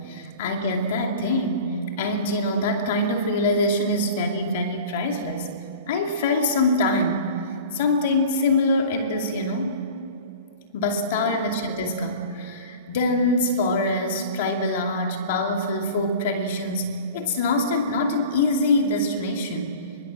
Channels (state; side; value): inverted; both; correlation -0.39